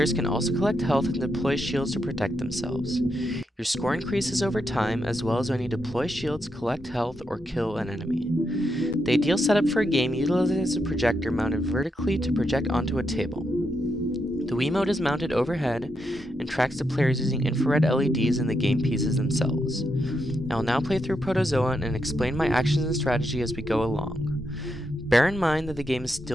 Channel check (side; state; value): both; normal; correlation 0.82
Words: can also collect health and deploy shields to protect themselves. Your score increases over time, as well as when you deploy shields, collect health, or kill an enemy. The ideal setup for a game utilizes a projector mounted vertically to project onto a table. The Wiimote is mounted overhead and tracks the players using infrared LEDs in the game pieces themselves. I will now play through Protozoa and explain my actions and strategy as we go along. Bear in mind that the game is